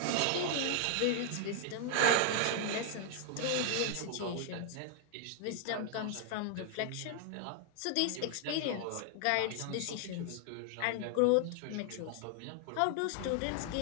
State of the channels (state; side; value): different; both; correlation 0.00